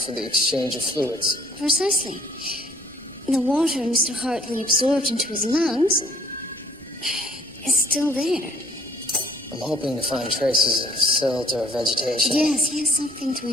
the exchange of fluids. Precisely. The water Mr. Hartley absorbed into his lungs is still there. I'm hoping to find traces of silt or vegetation. Yes, something to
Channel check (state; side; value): normal; both; correlation 0.59